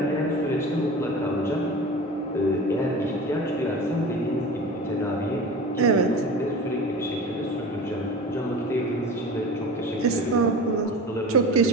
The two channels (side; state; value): both; normal; correlation 0.34